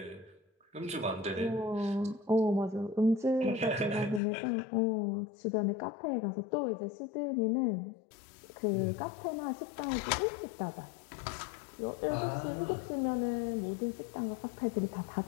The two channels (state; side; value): drops out; right; at 4.2 s